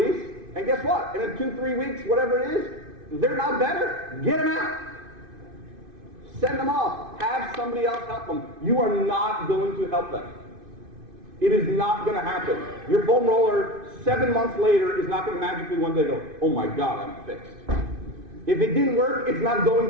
and guess what? In 2-3 weeks, whatever it is, they're not better. Get them out. Send them off. Have somebody else help them. You are not going to help them. It is not going to happen. Your foam roller, 7 months later, is not going to magically one day go, oh my God, I'm fixed. If it didn't work, it's not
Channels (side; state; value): left; late; 2.5 ms